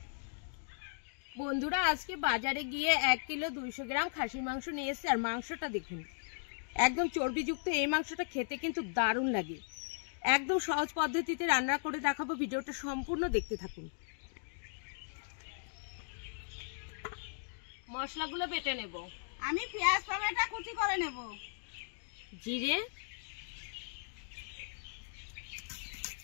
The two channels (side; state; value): right; silent; digital silence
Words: বন্ধুরা আজকে বাজারে গিয়ে 1 কিলো 200 গ্রাম খাসির মাংস নিয়ে এসেছি। আর মাংসটা দেখুন একদম চর্বিযুক্ত। এই মাংসটা খেতে কিন্তু দারুণ লাগে। একদম সহজ পদ্ধতিতে রান্না করে দেখাবো, ভিডিওটা সম্পূর্ণ দেখতে থাকুন। মশলাগুলো বেটে নেব। আমি পেঁয়াজ টমেটো কুচি করে নেব। জিরে,